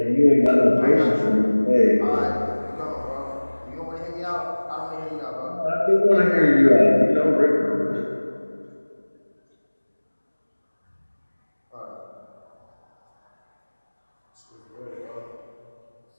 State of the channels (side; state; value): both; inverted; correlation -1.00